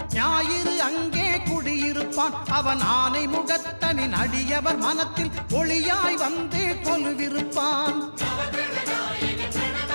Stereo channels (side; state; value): both; inverted; correlation -1.00